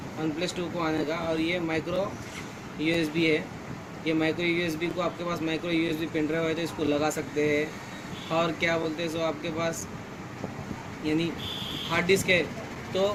OnePlus 2 को आने का, और ये माइक्रो USB है। ये माइक्रो USB को आपके पास माइक्रो USB पेन ड्राइव है तो इसको लगा सकते हैं, और क्या बोलते हैं सो आपके पास यानी हार्ड डिस्क है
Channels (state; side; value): identical; both; correlation 1.00